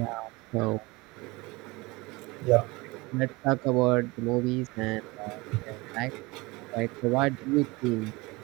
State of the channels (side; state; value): left; quieter; 23.8 dB